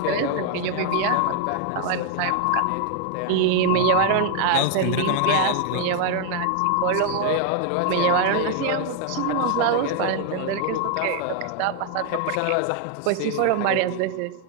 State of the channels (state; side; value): different; both; correlation 0.00